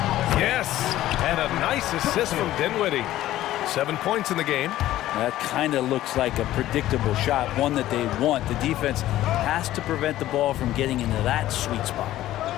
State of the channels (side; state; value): right; quieter; 14.3 dB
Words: Yes, and a nice assist from Dinwiddie. 7 points in the game. That kind of looks like a predictable shot, one that they want. The defense has to prevent the ball from getting into that sweet spot.